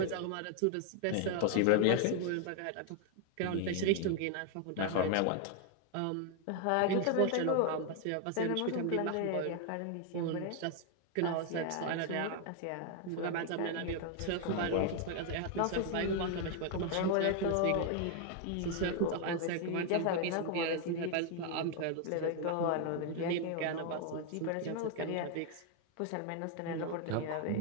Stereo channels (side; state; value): both; different; correlation 0.00